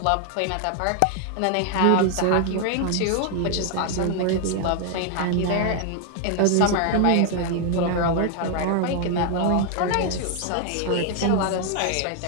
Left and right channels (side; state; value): both; different; correlation 0.00